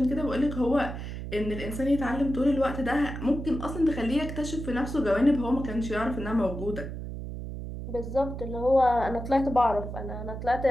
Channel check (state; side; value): noise; right; hum, 7 dB below the sound